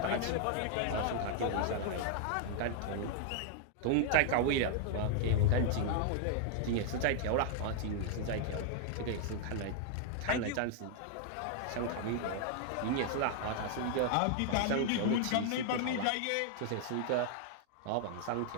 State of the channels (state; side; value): different; both; correlation 0.00